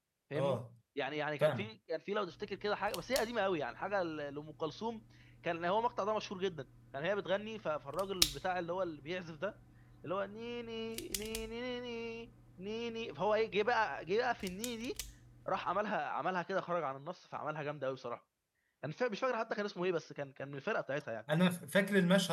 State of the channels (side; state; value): both; identical; correlation 1.00